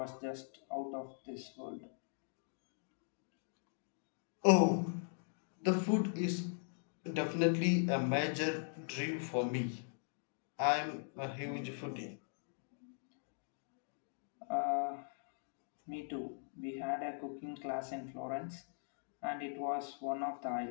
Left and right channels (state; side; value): silent; right; digital silence